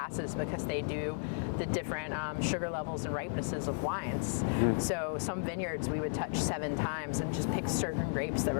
because they do the different sugar levels and ripenesses of wines. Mm-hmm. So some vineyards we would touch 7 times and just pick certain grapes that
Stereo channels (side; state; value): right; silent; digital silence